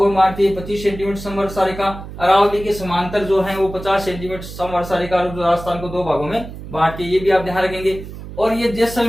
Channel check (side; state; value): right; noise; hum, 12 dB below the sound